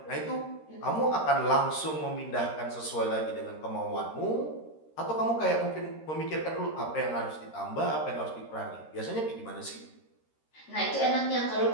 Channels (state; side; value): late; right; 13 ms